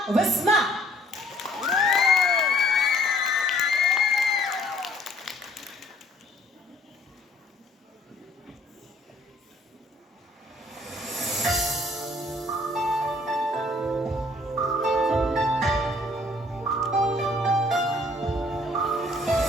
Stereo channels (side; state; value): both; normal; correlation 0.59